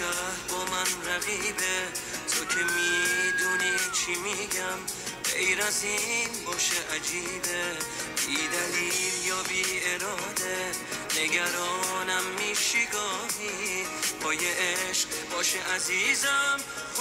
با من رقیبه، تو که میدونی چی میگم، غیر از این باشه عجیبه، بی دلیل یا بی اراده نگرانم میشی گاهی، پای عشق باشه عزیزم،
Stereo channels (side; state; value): both; identical; correlation 1.00